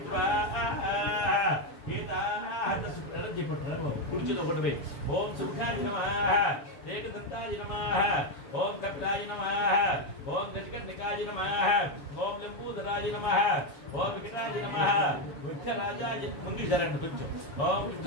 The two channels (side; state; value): right; late; 7.2 ms